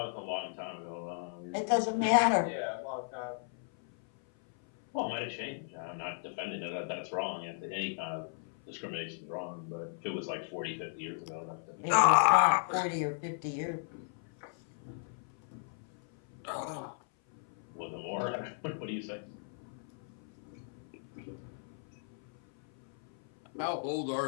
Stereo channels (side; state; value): right; silent; 54 dB below the other